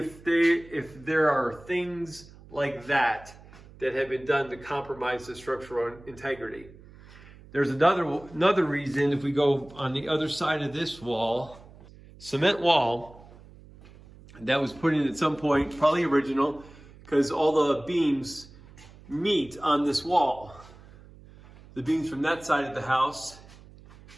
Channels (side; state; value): right; noise; hum, 21 dB below the sound